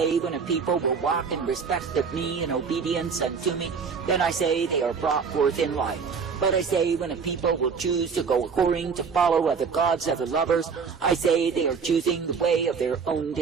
when a people will walk in respect of me and obedience unto me, then I say they are brought forth in life. But I say when a people will choose to go according to follow other gods, other lovers, I say they are choosing the way of their own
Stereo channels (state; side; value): quieter; left; 5.8 dB